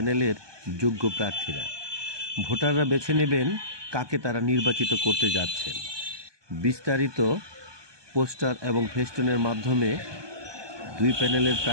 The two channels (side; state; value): left; late; 1.2 ms